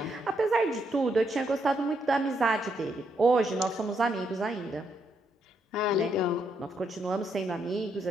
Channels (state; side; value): normal; both; correlation 0.77